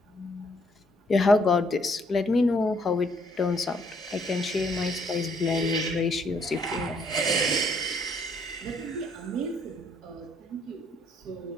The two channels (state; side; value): normal; both; correlation 0.67